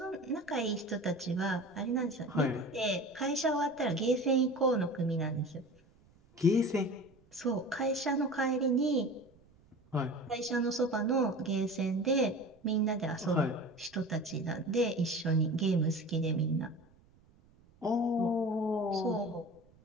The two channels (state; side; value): noise; right; rumble, 29 dB below the sound